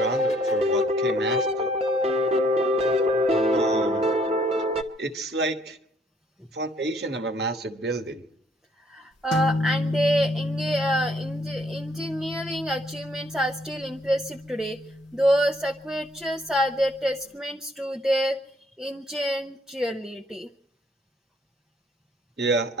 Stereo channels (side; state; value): both; normal; correlation 0.65